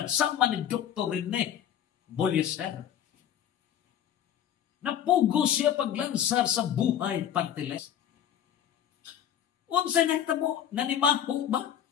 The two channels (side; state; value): right; quieter; 9.9 dB